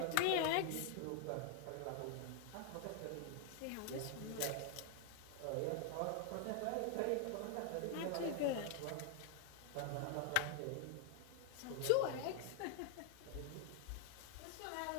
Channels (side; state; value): both; different; correlation 0.00